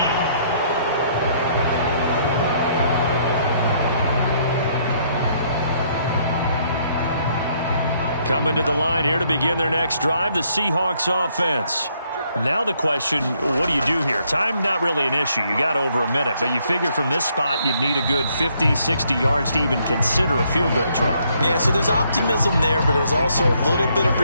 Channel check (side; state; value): both; inverted; correlation -0.69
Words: Coming to the line here to begin their next drive, the Seahawks offense. Now the question, what do you do here? Time, not really an issue. You got over a minute, but you figure from this spot you'd need a good 50, 60 yards to even consider a field goal try. Yeah, so there's optimism there, but there's also a little bit of